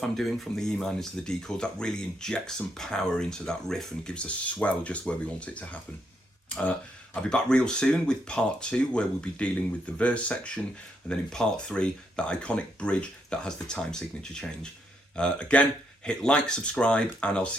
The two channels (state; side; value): normal; both; correlation 0.77